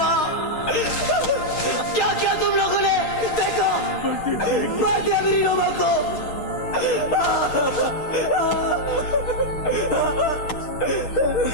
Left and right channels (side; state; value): right; late; 6.4 ms